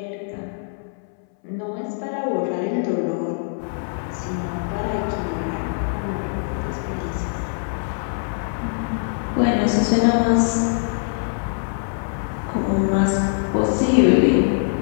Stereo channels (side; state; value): right; silent; 64 dB below the other